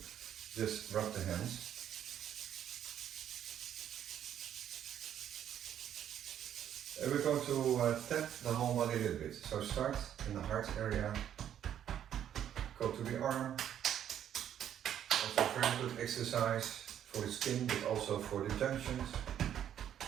rub the hands. And we're going to tap the whole body a little bit. So start in the heart area, go to the arm. Also very good exercise for the skin, but also for the junctions.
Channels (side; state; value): left; quieter; 10.1 dB